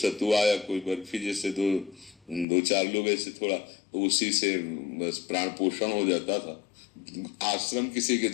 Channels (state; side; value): drops out; right; at 2.5 s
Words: या कोई बर्फी जैसे दो चार लोग ऐसे थोड़ा, तो उसी से बस प्राण पोषण हो जाता था। आश्रम किसी के